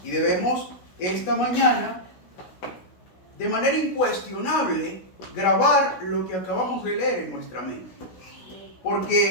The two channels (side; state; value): right; late; 16 ms